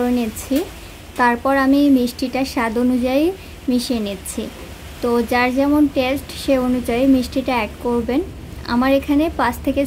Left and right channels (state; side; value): identical; both; correlation 1.00